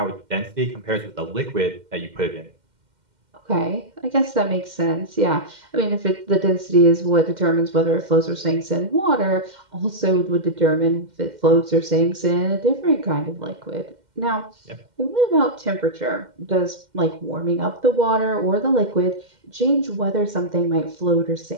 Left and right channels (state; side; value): late; left; 2.1 ms